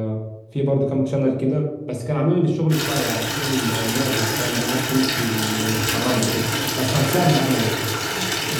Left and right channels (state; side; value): identical; both; correlation 1.00